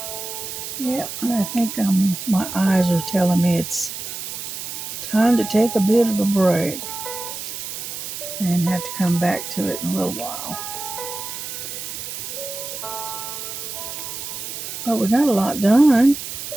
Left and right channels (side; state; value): right; noise; hiss, 7 dB below the sound